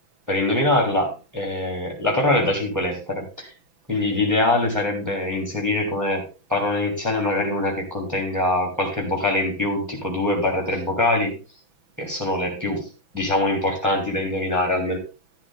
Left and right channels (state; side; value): late; left; 6.0 ms